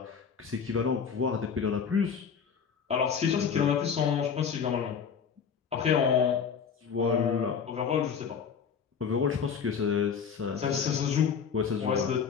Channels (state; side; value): quieter; right; 6.8 dB